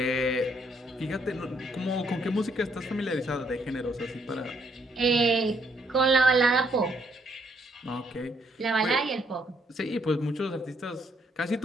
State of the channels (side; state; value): both; normal; correlation 0.71